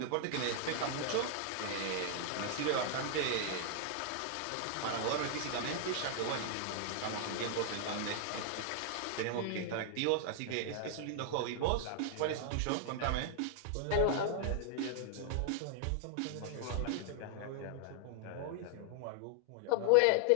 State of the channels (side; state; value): both; different; correlation 0.00